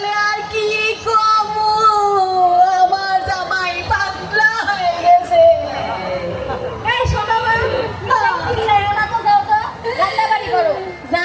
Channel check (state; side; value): identical; both; correlation 1.00